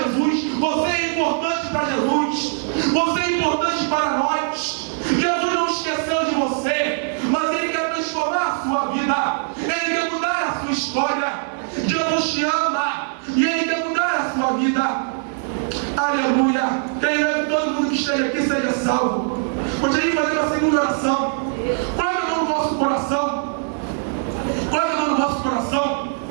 Jesus? Você é importante para Jesus. Você é importante para nós. Jesus não esqueceu de você, mas Ele quer transformar a sua vida. Ele quer mudar a sua história. Jesus te ama e Ele quer mudar a sua vida. Aleluia. Creio que todo mundo que esteja aqui seja salvo. Gostaria de fazer uma segunda oração. Coloque a mão no vosso coração. Coloque a mão no vosso coração.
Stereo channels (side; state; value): left; silent; 65 dB below the other